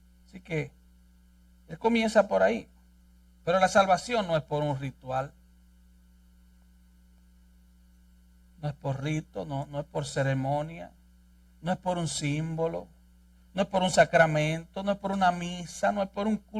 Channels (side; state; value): both; identical; correlation 1.00